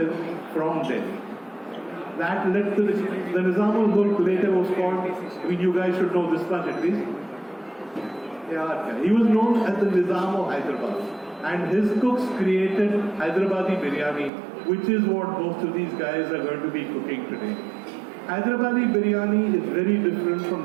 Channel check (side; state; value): left; drops out; at 14.3 s